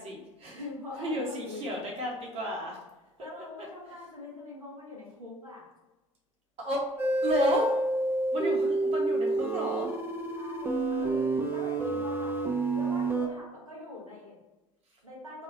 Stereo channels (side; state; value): both; normal; correlation 0.60